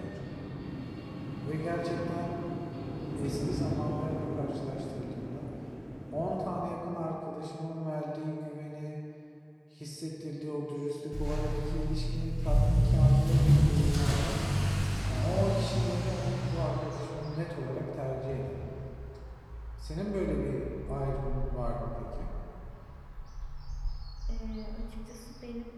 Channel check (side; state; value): both; identical; correlation 1.00